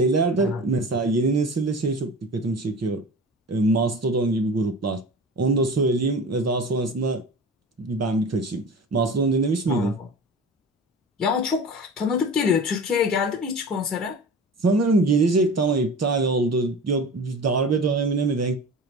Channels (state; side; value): normal; both; correlation 0.34